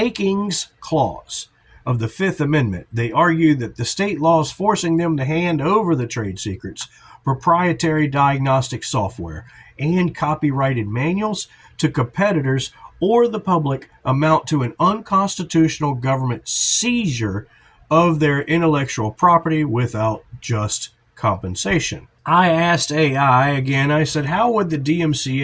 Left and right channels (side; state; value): both; identical; correlation 1.00